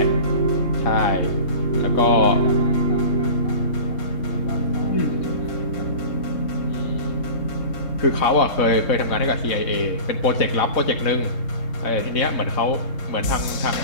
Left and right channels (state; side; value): late; right; 3.7 ms